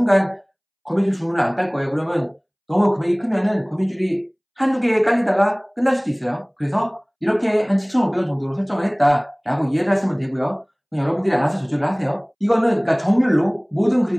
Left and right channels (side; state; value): both; identical; correlation 1.00